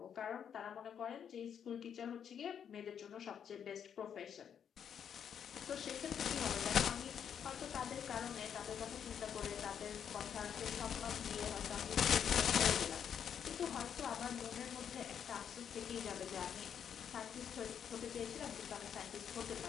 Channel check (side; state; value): right; quieter; 8.2 dB